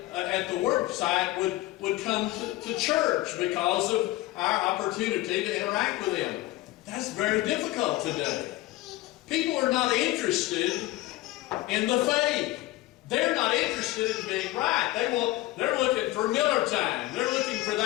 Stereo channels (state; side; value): quieter; right; 17.7 dB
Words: at the work site would come to church because of our opportunity to interact with them. That's very difficult today. People are not interested in the faith. They're not interested in being right. They're looking for Miller time. They're looking for